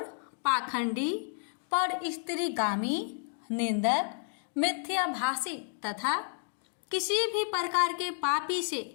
पाखंडी, पर स्त्रीगामी, निंदक, मिथ्याभाषी तथा किसी भी प्रकार के पापी से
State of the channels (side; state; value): right; silent; digital silence